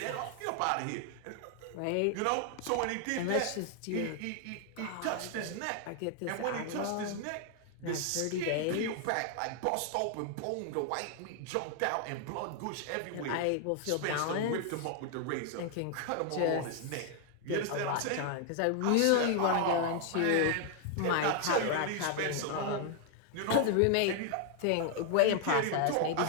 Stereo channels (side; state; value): both; different; correlation 0.00